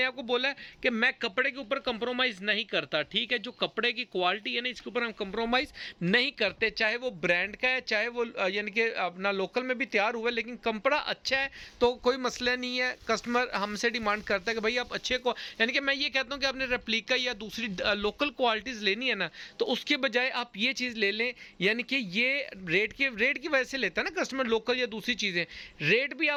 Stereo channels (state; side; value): identical; both; correlation 1.00